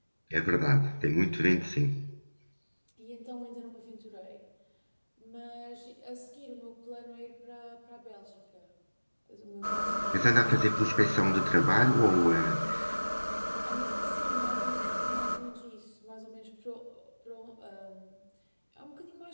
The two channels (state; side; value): inverted; both; correlation -1.00